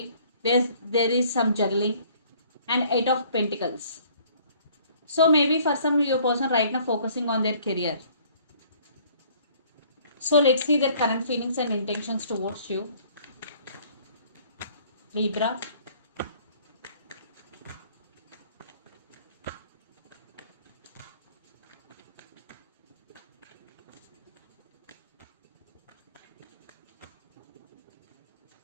There is some juggling. And Eight of Pentacles. So maybe for some your person right now focusing on their career. So let's see their current feelings and intentions towards you. Libra.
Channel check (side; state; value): both; inverted; correlation -0.57